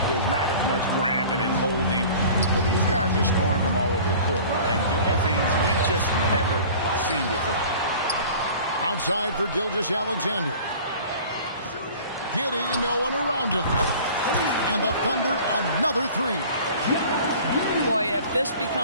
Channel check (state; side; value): inverted; both; correlation -0.44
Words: there's not as much grabbing and holding, but these guys are scoring from all over the court and doing things we've just never seen before. Outside for Gilgeous-Alexander. Giddey, no one around him. And the Thunder, another 3. Boy, if this